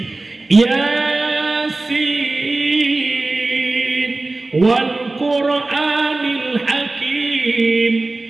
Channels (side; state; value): left; quieter; 3.1 dB